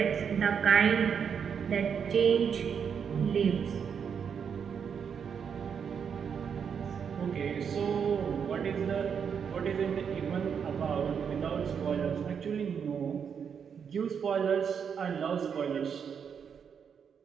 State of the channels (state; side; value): quieter; left; 7.1 dB